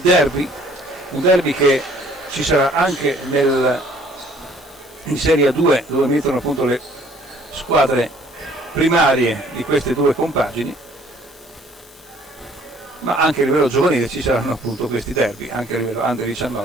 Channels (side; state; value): left; noise; hiss, 25 dB below the sound